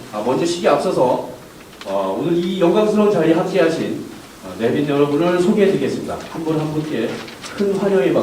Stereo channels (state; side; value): identical; both; correlation 1.00